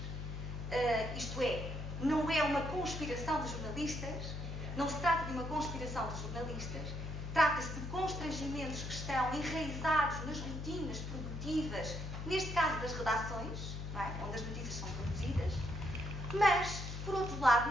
Isto é, não é uma conspiração de jornalistas, não se trata de uma conspiração de jornalistas, trata-se de constrangimentos que estão enraizados nas rotinas produtivas, neste caso das redações, não é? Onde as notícias são produzidas, mas, por outro lado,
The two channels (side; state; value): left; noise; hum, 6 dB below the sound